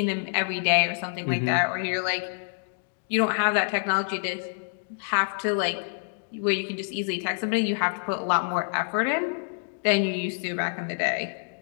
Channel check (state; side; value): silent; right; digital silence